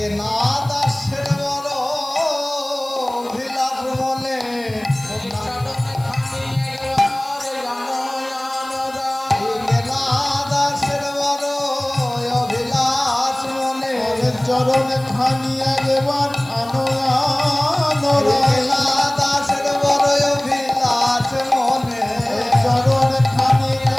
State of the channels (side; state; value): left; noise; hiss, 22 dB below the sound